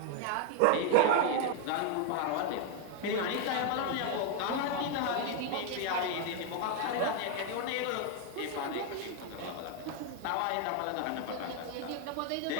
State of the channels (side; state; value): both; different; correlation 0.00